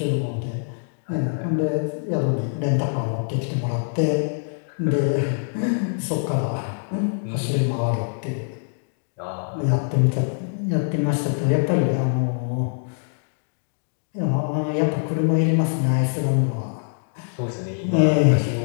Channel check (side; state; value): right; silent; digital silence